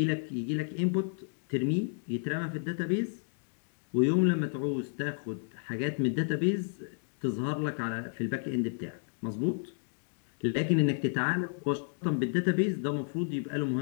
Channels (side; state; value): right; silent; digital silence